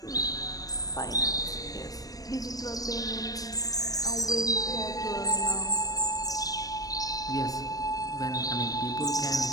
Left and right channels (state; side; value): late; right; 0.18 ms